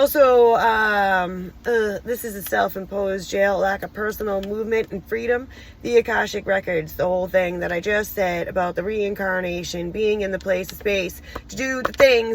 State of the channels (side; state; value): both; identical; correlation 1.00